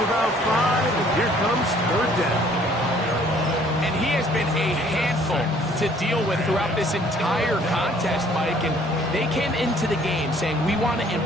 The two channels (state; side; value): normal; both; correlation 0.59